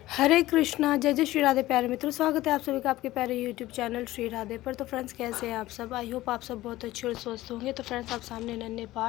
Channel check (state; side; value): quieter; right; 16.7 dB